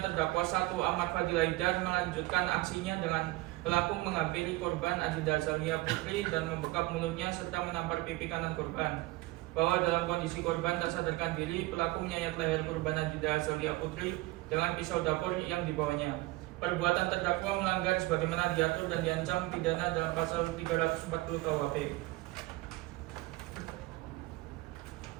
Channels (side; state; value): left; quieter; 20.3 dB